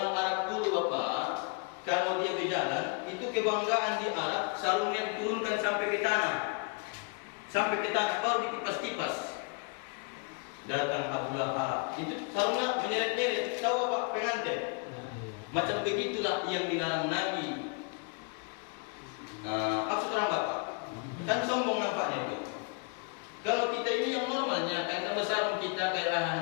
Arab dulu Bapak, kalau dia berjalan, itu kebanggaan di Arab, sarungnya diturunkan sampai ke tanah. Sampai ke tanah, baru dikipas-kipas. Datang Abu Lahab, itu sarungnya menyeret-nyeret. Tahu Bapak, pengantin. Macam begitulah yang dilarang Nabi.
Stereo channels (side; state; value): right; quieter; 33.8 dB